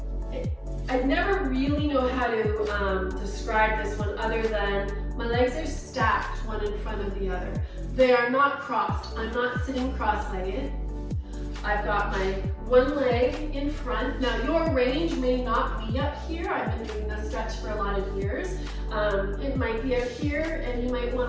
I never really know how to describe this one other than my legs are stacked one in front of the other. They are not crossed. I'm not sitting cross-legged. I've got my one leg in front. Now your range may not be up here. I've been doing this stretch for a lot of years. It might be up here, and you might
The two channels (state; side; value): identical; both; correlation 1.00